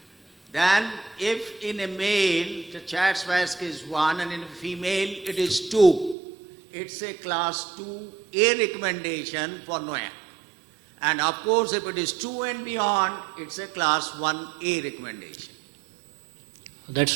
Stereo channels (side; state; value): left; drops out; at 6.2 s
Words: Then if in a male the CHA2DS2-VASc is 1 and in a female it is 2, it's a class 2A recommendation for NOAC. And of course if it is 2 and beyond, it's a class 1A recommendation. That's